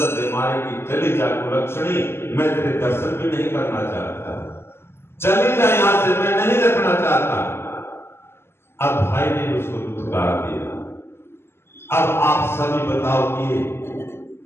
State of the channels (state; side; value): late; right; 0.12 ms